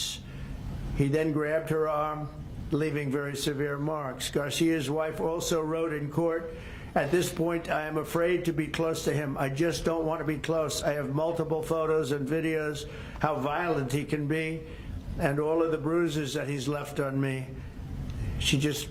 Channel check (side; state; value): both; identical; correlation 1.00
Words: He then grabbed her arm, leaving very severe marks. Garcia's wife also wrote in court, "At this point, I am afraid to be close to him. I just don't want to be close. I have multiple photos and videos how violent he can be and all of the bruises that he's left on me." She just